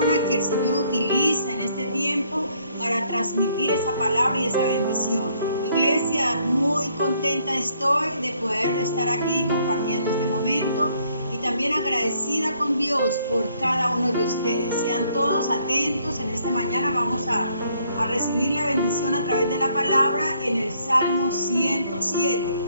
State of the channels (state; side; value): inverted; both; correlation -0.67